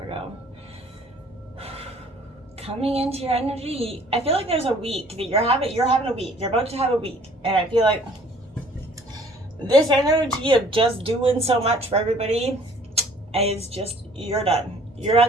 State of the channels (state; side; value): normal; both; correlation 0.55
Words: Coming into your energy, I feel like there's a week that you're having a week. You're about to have a week, and I feel like this energy of just doing so much for everybody is just, you're done. You're